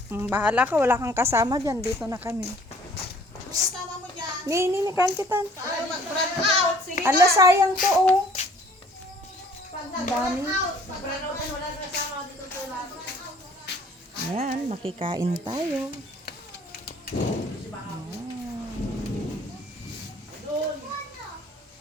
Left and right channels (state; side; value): normal; both; correlation 0.56